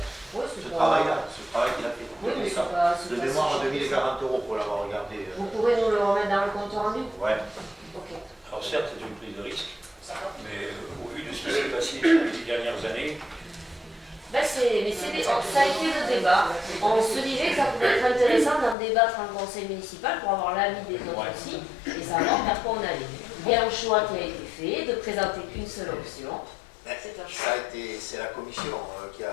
Ouais, c'est Ce pas- travail-là, ce travail qu'il a fait. Oui, mais c'est pas. De mémoire, 2040 euros pour l'avoir regardé. Vous pourrez nous le remettre dans le compte rendu? Ouais. Ok. Alors certes, c'est une prise de risque, mais au vu de ce qui s'est passé les 10 dernières années, Ça a été le débat. On se disait que ça pouvait être intéressant d'en débattre en conseil municipal pour avoir l'avis des autres aussi et savoir vers quoi on allait. Il y a un choix qui a été fait de présenter qu'une seule option. C'est un choix. C'est la commission qui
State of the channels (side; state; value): right; drops out; at 18.8 s